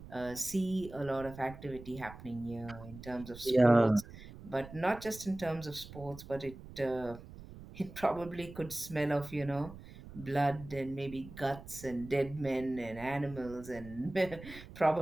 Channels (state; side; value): noise; right; rumble, 15 dB below the sound